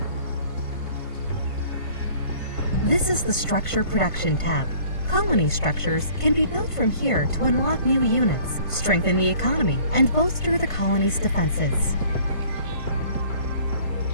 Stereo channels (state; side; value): late; right; 1.5 ms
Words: This is the Structure Production tab. Colony structures can be built from here to unlock new units, strengthen the economy, and bolster the colony's defenses.